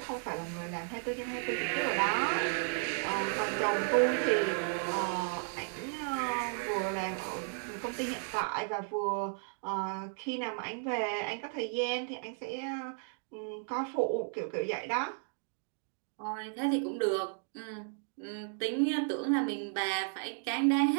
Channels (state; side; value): silent; left; 55 dB below the other